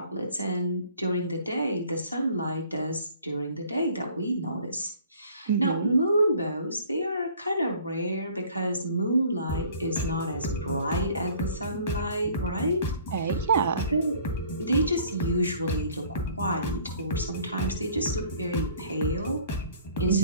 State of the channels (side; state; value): both; inverted; correlation -0.53